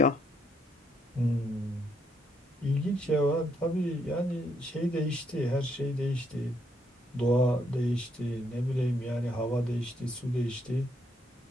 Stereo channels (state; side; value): normal; both; correlation 0.74